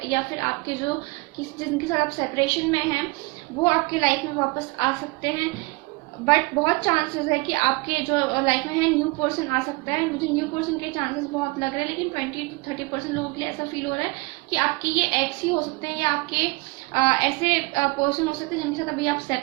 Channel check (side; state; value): left; quieter; 25.7 dB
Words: या फिर आपके जो जिनके साथ आप सेपरेशन में हैं वो आपके लाइफ में वापस आ सकते हैं। बट बहुत चांसेस है कि आपके जो लाइफ में है न्यू पर्सन आ सकता है। मुझे न्यू पर्सन के चांसेस बहुत लग रहे हैं, लेकिन 20-30% लोगों के लिए ऐसा फील हो रहा है कि आपके ये एक्स ही हो सकते हैं, या आपके ऐसे पर्सन हो सकते हैं जिनके साथ अभी आप